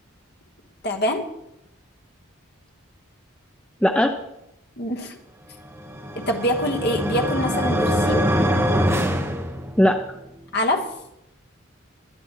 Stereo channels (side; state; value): both; normal; correlation 0.61